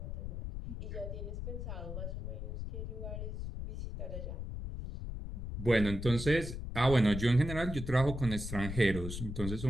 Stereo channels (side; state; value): left; noise; rumble, 6 dB below the sound